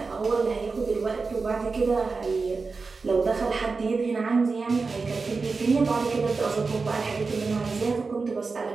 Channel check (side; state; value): left; quieter; 4.3 dB